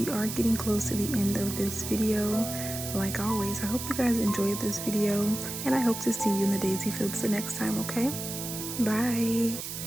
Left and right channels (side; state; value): right; noise; hiss, 7 dB below the sound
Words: are getting close to the end of this video. Like always, I hope you guys enjoyed this video, and I hope to see you in the daisy fields the next time, okay? Bye!